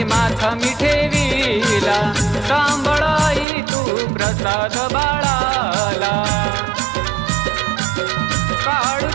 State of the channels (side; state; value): left; drops out; at 3.5 s